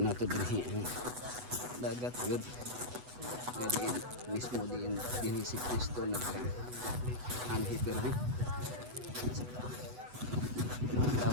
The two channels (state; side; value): late; left; 8.1 ms